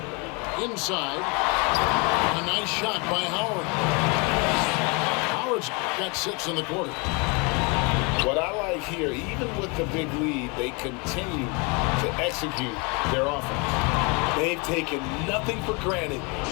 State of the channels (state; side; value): quieter; right; 30.2 dB